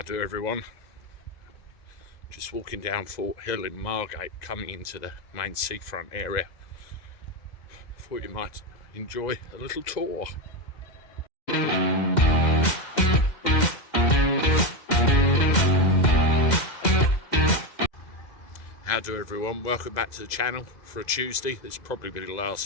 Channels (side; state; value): right; late; 2.0 ms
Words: do everyone? Just walking down Fort Hill in Margate, coming into the main seafront area. Thought you might enjoy a little tour. How do everyone? Welcome back to the channel for a Tuesday. This will probably be the